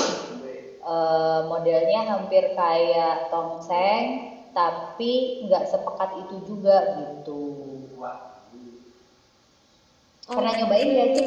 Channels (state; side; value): identical; both; correlation 1.00